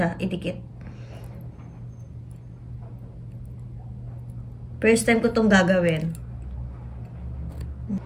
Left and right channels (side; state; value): both; identical; correlation 1.00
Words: idikit. First time ko itong gagawin.